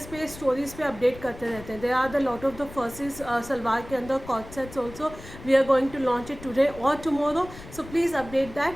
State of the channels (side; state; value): left; noise; rumble, 16 dB below the sound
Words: पे, स्टोरीज पे अपडेट करते रहते हैं। There are the lot of the फर्सेस सलवार के अंदर coord sets also we are going to launch it today और tomorrow. So please update